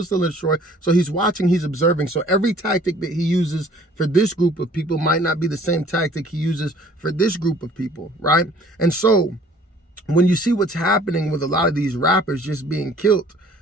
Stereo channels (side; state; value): both; normal; correlation 0.54